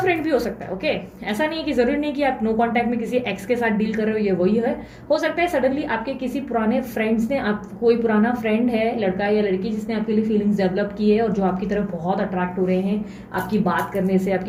भी हो सकता है, ओके ऐसा नहीं है कि जरूरी नहीं कि आप नो कांटेक्ट में किसी एक्स के साथ डील कर रहे हो, ये वही है। हो सकता है सडनली आपके किसी पुराने फ्रेंड्स ने, आप कोई पुराना फ्रेंड है लड़का या लड़की जिसने आपके लिए फीलिंग्स डेवलप की है और जो आपकी तरफ बहुत अट्रैक्ट हो रहे हैं आपकी बात करने से,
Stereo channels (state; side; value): identical; both; correlation 1.00